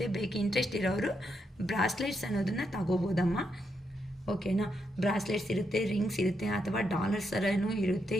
ಬೇಕು ಇಂಟ್ರೆಸ್ಟ್ ಇರೋರು ಬ್ರಾಸ್ಲೆಟ್ಸ್ ಅನ್ನೋದನ್ನು ತಗೋಬೋದಮ್ಮ, ಓಕೆನಾ. ಬ್ರಾಸ್ಲೆಟ್ಸ್ ಇರುತ್ತೆ, ರಿಂಗ್ಸ್ ಇರುತ್ತೆ, ಅಥವಾ ಡಾಲರ್ಸ್ ಥರನೂ ಇರುತ್ತೆ.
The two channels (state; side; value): normal; both; correlation 0.81